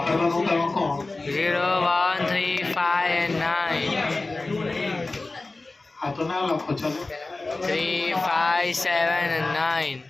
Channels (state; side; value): quieter; right; 3.3 dB